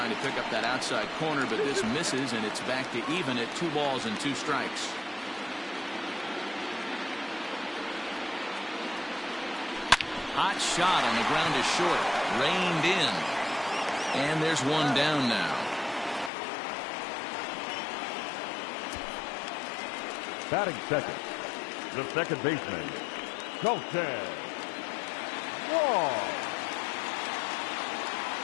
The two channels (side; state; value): right; drops out; at 16.3 s